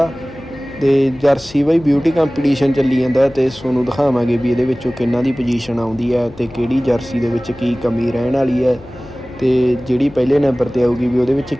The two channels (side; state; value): left; noise; hum, 20 dB below the sound